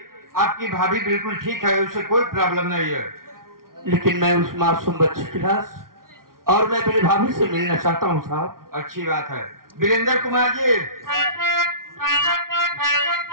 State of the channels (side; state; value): left; late; 0.92 ms